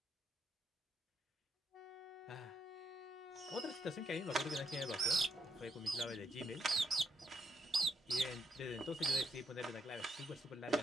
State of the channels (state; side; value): normal; both; correlation 0.75